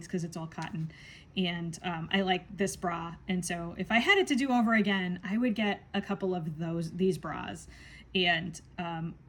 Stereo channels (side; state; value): both; identical; correlation 1.00